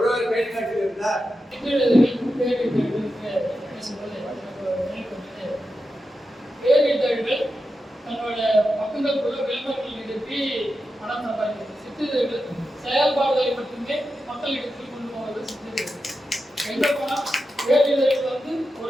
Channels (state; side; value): normal; both; correlation 0.89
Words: கைகாட்டில் இருந்தார். பேரிதழ்கள் தன்னோட பக்கங்களுக்குள்ள விளம்பரங்கள் நிறுத்தி பணம் சம்பாதிக்கிறது. சிற்றிதழ்கள் செயல்பாடுகளை மட்டுமே மக்களிடத்தில் கொண்டு போவது சிற்றிதழ்கள். எங்க போனா பேரிதழ்கள் வந்து